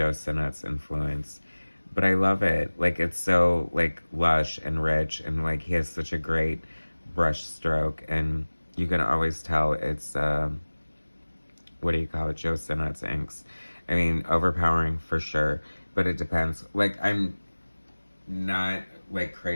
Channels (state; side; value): inverted; both; correlation -1.00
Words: Sinnott's influence. But I love it. Like, it's so, like, lush and rich, and, like, he has such a great brush stroke, and you can always tell it's, Joe Sinnott's inks. I mean, overpowering for sure, but it depends. Like, I'm not, like,